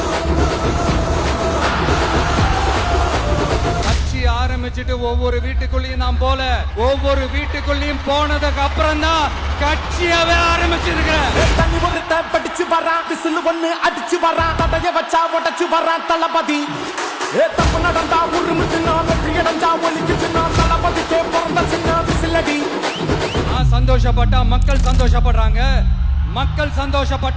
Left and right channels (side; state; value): both; identical; correlation 1.00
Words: ஆரம்பிச்சுட்டு ஒவ்வொரு வீட்டுக்குள்ளேயும் நாம் போல ஒவ்வொரு வீட்டுக்குள்ளேயும் போனதுக்கு அப்புறம் தான் கட்சியாவே ஆரம்பிச்சிருக்கிறேன். படிச்சு வரான் விசில் ஒண்ணு அடிச்சு வரான் தடைய வச்சா உடச்சு வரான் தளபதி. தப்பு நடந்தா உருமு சின்ன வெற்றி அடைஞ்சா ஒலிக்கு சின்ன தளபதிக்கே பிறந்த சின்ன விசிலடி. நான் சந்தோஷப்பட்டா மக்கள் சந்தோஷப்படுறாங்க, மக்கள்